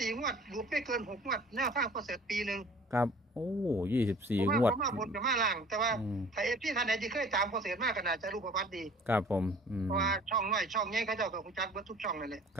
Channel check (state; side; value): normal; both; correlation 0.49